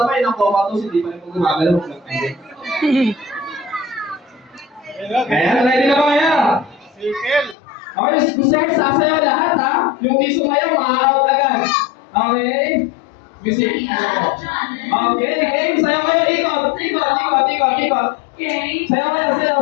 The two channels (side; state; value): right; drops out; at 7.6 s